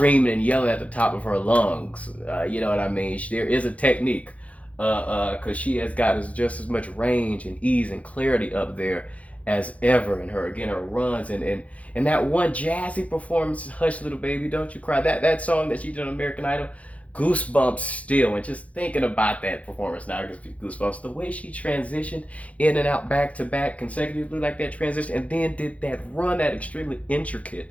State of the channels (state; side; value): late; right; 0.066 ms